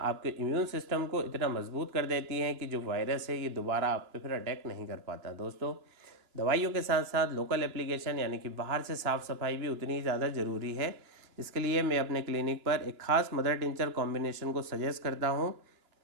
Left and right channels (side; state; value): left; late; 2.9 ms